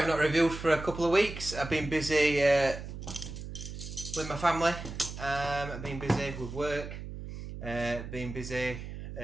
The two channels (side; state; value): right; noise; hum, 9 dB below the sound